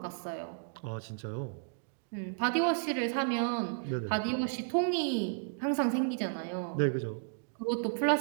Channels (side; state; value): left; silent; digital silence